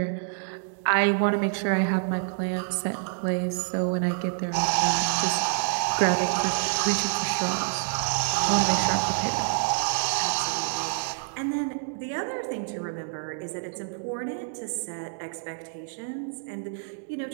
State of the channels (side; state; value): left; silent; digital silence